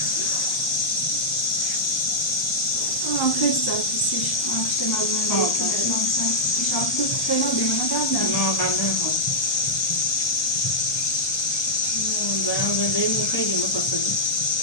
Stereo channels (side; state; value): right; late; 1.2 ms